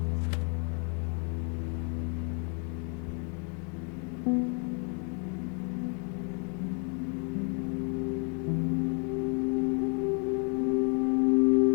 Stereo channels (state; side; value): quieter; right; 37.9 dB